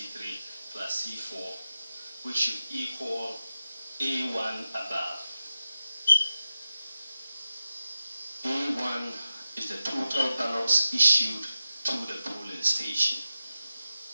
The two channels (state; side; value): inverted; both; correlation -0.92